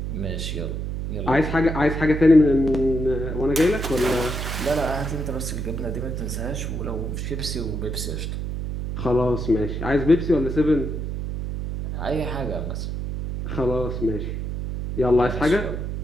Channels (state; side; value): noise; right; hum, 4 dB below the sound